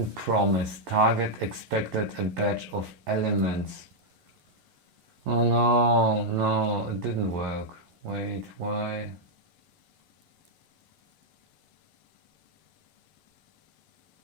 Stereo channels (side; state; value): left; late; 11 ms